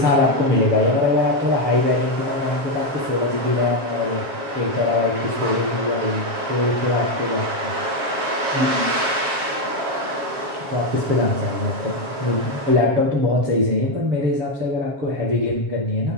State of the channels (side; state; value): left; late; 7.3 ms